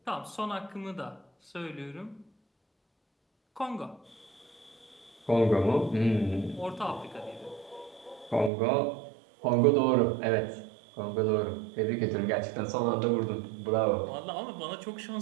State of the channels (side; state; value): left; drops out; at 8.5 s